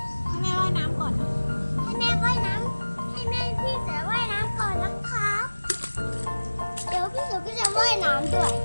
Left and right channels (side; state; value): both; inverted; correlation -1.00